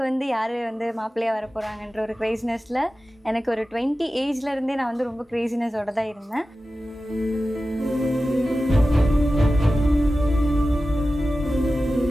வந்து யார் வந்து மாப்பிள்ளையாக வர போகிறாங்கன்ற ஒரு க்ரேசினஸில் எனக்கு ஒரு 20 ஏஜ்ல இருந்தே நான் வந்து ரொம்ப க்ரேசினஸோட தான் இருந்தேன்.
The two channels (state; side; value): normal; both; correlation 0.94